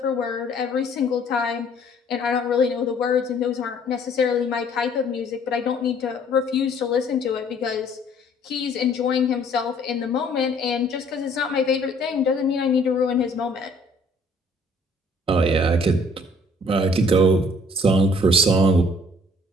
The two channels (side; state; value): both; normal; correlation 0.58